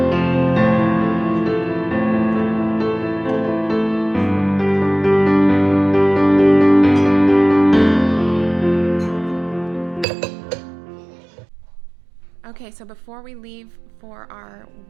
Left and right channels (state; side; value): drops out; left; at 10.1 s